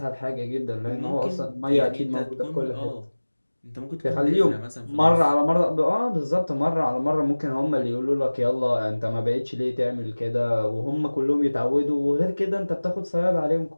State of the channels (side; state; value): both; inverted; correlation -1.00